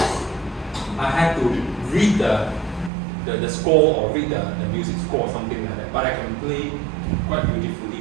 I have to read the score or read the music score or something like that. But I can play quite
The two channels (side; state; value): left; drops out; at 2.9 s